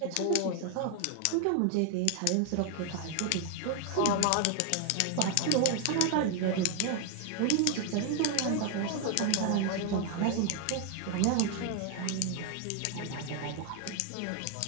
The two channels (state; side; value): different; both; correlation 0.01